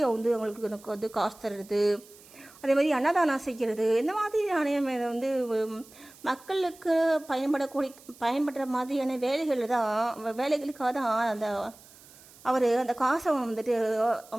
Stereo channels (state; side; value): noise; right; hiss, 23 dB below the sound